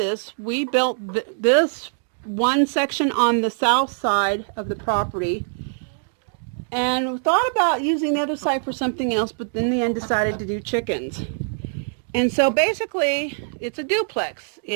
we built this one section on the south side of the property, and we thought about using the other side for something else, but in the end decided to do chickens. And so basically it's a duplex.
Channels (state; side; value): silent; left; digital silence